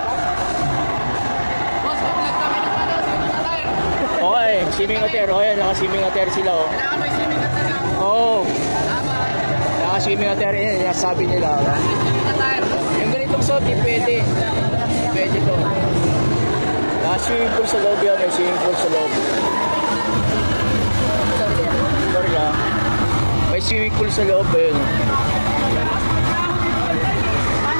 Okay, swimming attire. Oh, yan, naka-swimming attire sila, oh. Oh. Naka-swimming attire, yan, sabi nila. Yung ganitong suot, pwede. Pwede to. Naka-swimming pool sa loob yan, may swimming pool sa loob. Sorry ah. May swimming pool sa loob, yun.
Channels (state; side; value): inverted; both; correlation -1.00